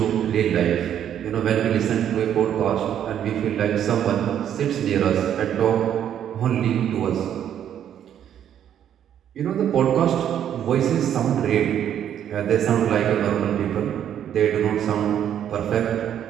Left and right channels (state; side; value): quieter; left; 9.9 dB